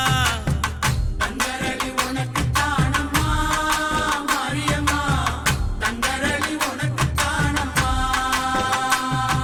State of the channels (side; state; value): both; identical; correlation 1.00